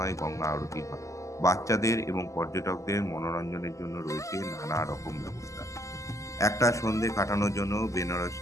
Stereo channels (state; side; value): late; right; 0.16 ms